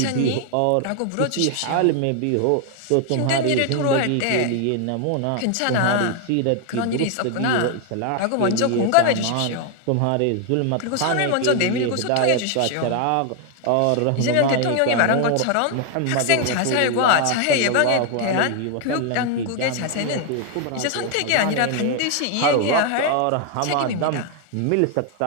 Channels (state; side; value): different; both; correlation 0.01